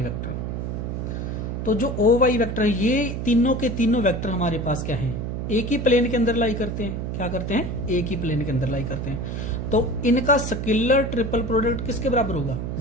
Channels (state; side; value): noise; right; hum, 4 dB below the sound